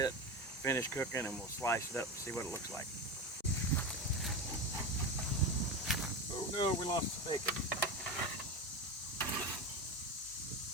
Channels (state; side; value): normal; both; correlation 0.21